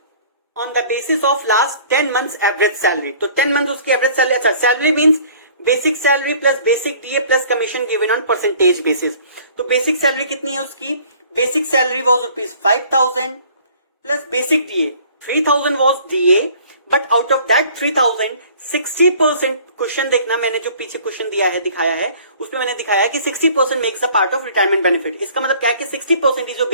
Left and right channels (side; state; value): both; inverted; correlation -0.52